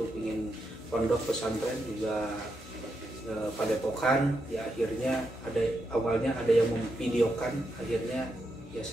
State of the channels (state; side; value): normal; both; correlation 0.83